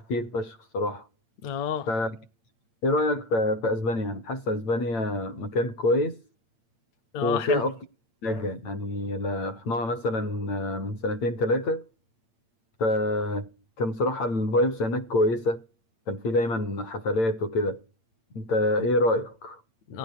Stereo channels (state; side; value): late; right; 8.7 ms